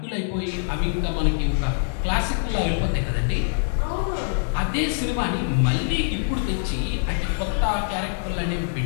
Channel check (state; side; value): silent; right; digital silence